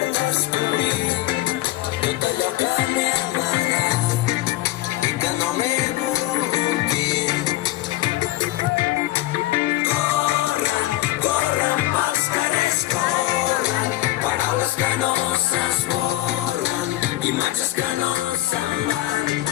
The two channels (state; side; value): quieter; right; 16.6 dB